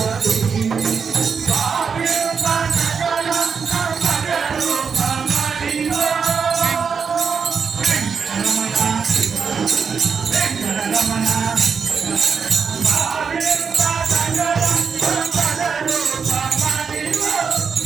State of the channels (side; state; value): left; quieter; 6.0 dB